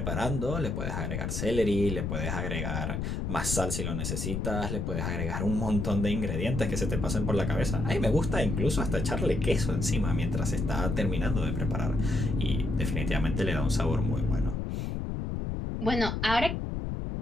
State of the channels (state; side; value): noise; left; rumble, 2 dB below the sound